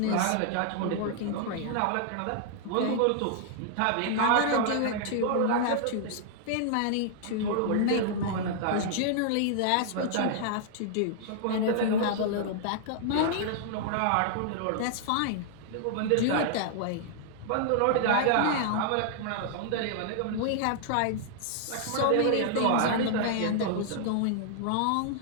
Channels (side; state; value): both; different; correlation -0.01